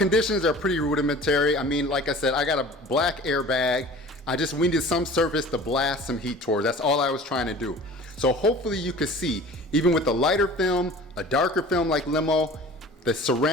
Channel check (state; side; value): normal; both; correlation 0.43